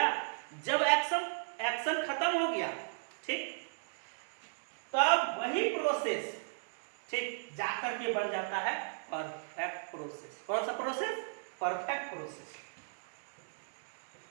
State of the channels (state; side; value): silent; left; digital silence